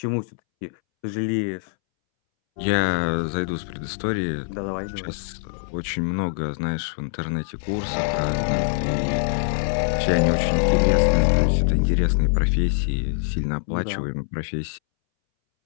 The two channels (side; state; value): right; silent; 63 dB below the other